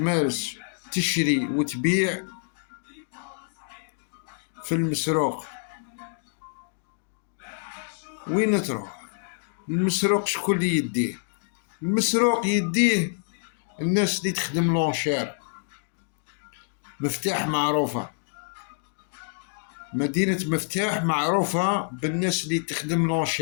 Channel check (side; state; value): right; silent; digital silence